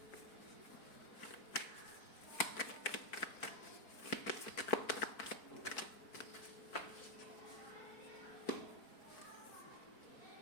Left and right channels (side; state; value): right; late; 4.5 ms